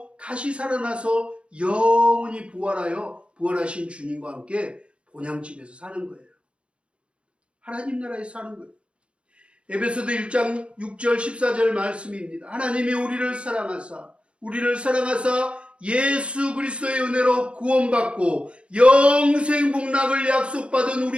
다시 살아나서 영원히 부활하여 부활하신 주님과 함께 본향집에서 사는 거예요. 하나님 나라에서 사는 거예요. 에베소서 1장 6절 14절 말씀입니다. 하나님이 우리를 사랑하사 예수 그리스도의 은혜로 구원받고 영생 복락을 약속받은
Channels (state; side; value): late; left; 0.059 ms